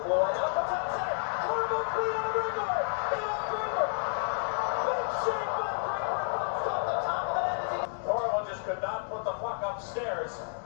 blue line, out the top center. Horrible clean on the breakaway. Draper. Big shake by Draper. Bounced off the top of the net as he... Horrible just could not put the puck upstairs.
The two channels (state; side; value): silent; right; 57 dB below the other